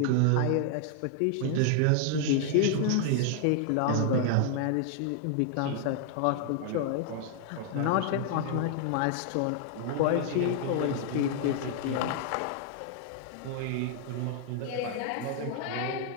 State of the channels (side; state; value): both; different; correlation 0.00